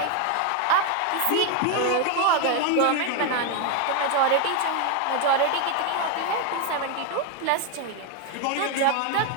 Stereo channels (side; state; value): both; different; correlation 0.01